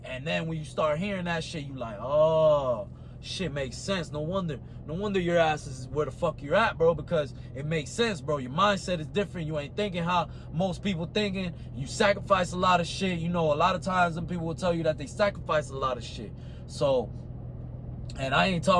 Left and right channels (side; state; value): both; identical; correlation 1.00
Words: And then when you start hearing that shit, you like, oh, shit makes sense. No wonder your ass is where the fuck you're at, bro, because it makes sense, bro. Your mindset is different. You ain't thinking how most people thinking. You sacrifice a lot of shit. You know, a lot of times some people will tell you that they sacrifice a lot of shit. So, and I ain't